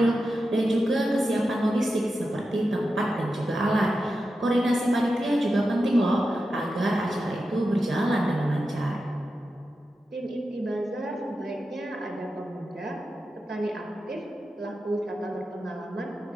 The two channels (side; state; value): both; normal; correlation 0.90